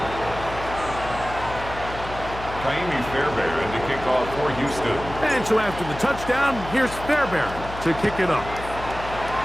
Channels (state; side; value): noise; left; hum, 11 dB below the sound